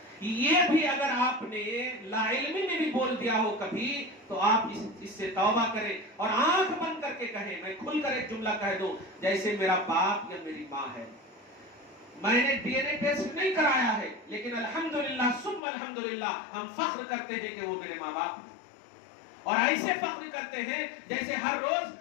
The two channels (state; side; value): drops out; right; at 15.6 s